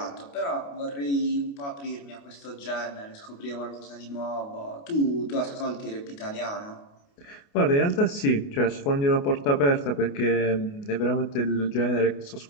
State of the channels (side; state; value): right; late; 28 ms